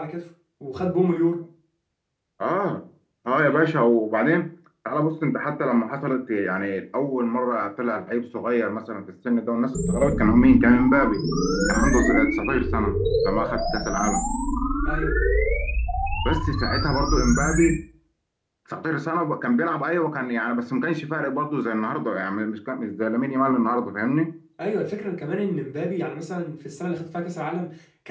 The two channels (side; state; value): both; identical; correlation 1.00